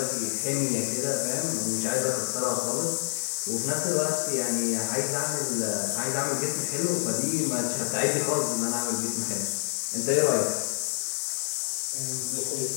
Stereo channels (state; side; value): silent; right; digital silence